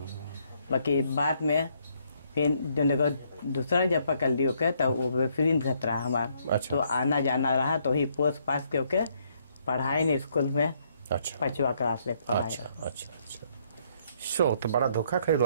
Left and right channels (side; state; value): both; inverted; correlation -0.71